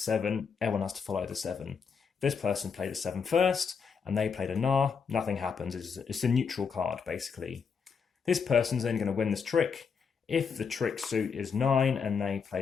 everyone has to follow the 7. This person played a 7 first, and they played a Nar, nothing happens. It's a neutral card, basically. This person's only going to win this trick. If the trick suit is 9 and they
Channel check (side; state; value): right; quieter; 6.0 dB